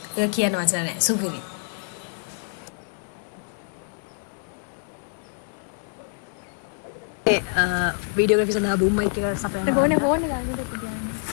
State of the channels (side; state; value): right; silent; 58 dB below the other